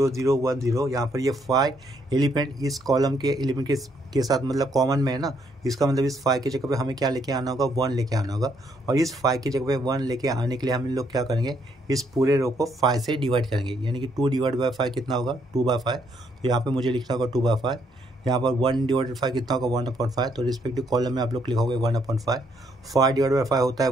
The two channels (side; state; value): both; normal; correlation 0.71